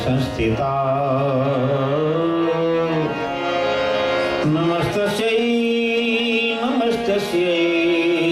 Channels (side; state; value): both; identical; correlation 1.00